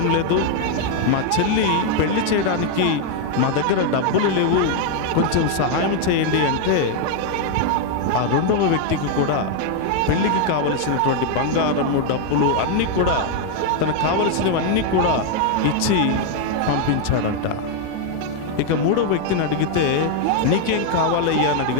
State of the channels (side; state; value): both; different; correlation 0.01